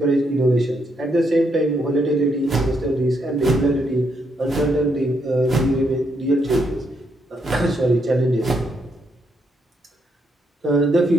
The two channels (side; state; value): both; normal; correlation 0.76